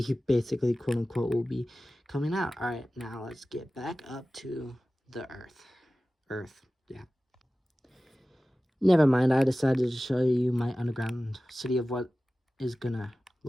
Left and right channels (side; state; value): both; normal; correlation 0.96